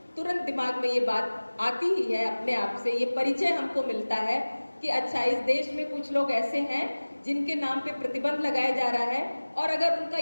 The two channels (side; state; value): both; inverted; correlation -1.00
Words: तुरंत दिमाग में ये बात आती ही है अपने आप से, ये परिचय हमको मिलता है कि अच्छा, इस देश में कुछ लोग ऐसे हैं जिनके नाम पे प्रतिबंध लगाया जा रहा है, और अगर उनका